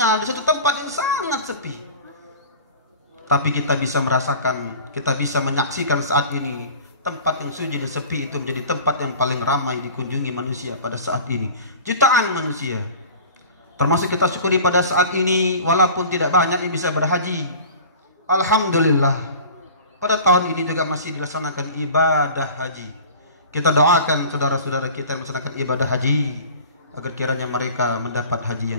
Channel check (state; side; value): inverted; both; correlation -0.40